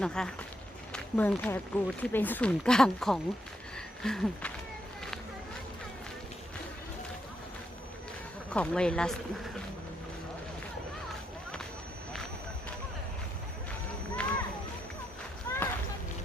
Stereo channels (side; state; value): both; normal; correlation 0.79